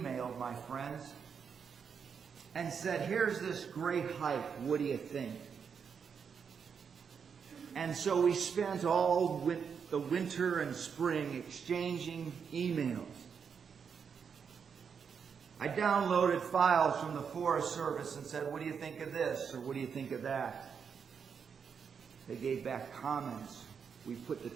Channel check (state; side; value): quieter; left; 6.6 dB